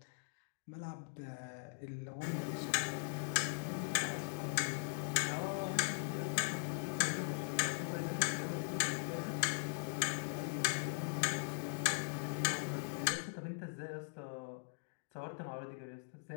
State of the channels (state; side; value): silent; right; digital silence